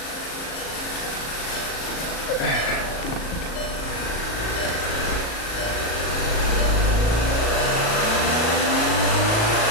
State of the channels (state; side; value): late; right; 38 ms